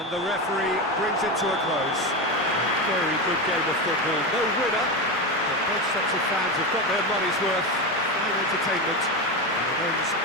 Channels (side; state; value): both; normal; correlation 0.17